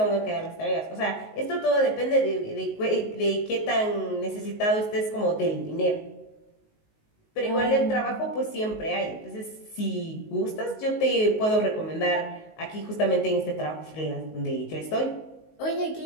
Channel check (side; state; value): right; late; 19 ms